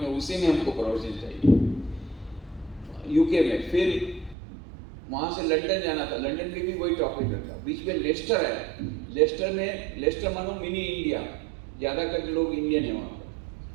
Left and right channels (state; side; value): drops out; left; at 4.4 s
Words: उसी में हमको प्रवचन चाहिए यूके में। फिर वहाँ से लंदन जाना था, लंदन में भी वही टॉपिक रखा। बीच में लेस्टर है, लेस्टर मानो मिनी इंडिया, ज़्यादा करके लोग इंडियन है वहाँ पर।